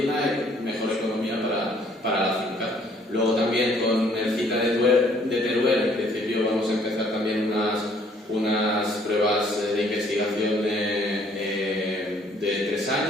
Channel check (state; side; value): normal; both; correlation 0.62